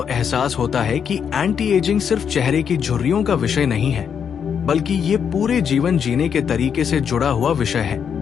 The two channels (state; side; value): quieter; right; 7.5 dB